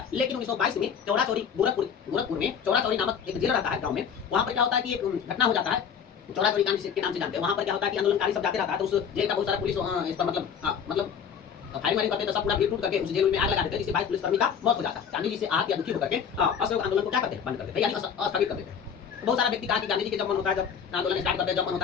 लेकिन 1922 में चौरा चौरी गोरखपुर में चौरा चौरी नामक एक जेल रहता है गांव में। वहां पर क्या होता है कि एक घटना हो जाता है, चौरा चौरी कांड के नाम से जानते हैं। वहां पर क्या होता है कि आंदोलनकारी सब जाते रहता है, तो उस जेल का बहुत सारा पुलिस इस पर मतलब फायरिंग करते तो सब पूरा भीड़ टूट करके उस जेल में आग लगा देते हैं, जिससे 22 पुलिसकर्मी का मौत हो जाता है। गांधी जी से आहत या दुखी होकर के असहयोग आंदोलन को क्या करते हैं, बंद कर देते हैं, यानी अस्थगित कर देते हैं। बहुत सारा व्यक्ति कहा कि गांधी जी के जब मन होता है जब आंदोलन स्टार्ट करते हैं, जब मन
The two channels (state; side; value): quieter; right; 7.3 dB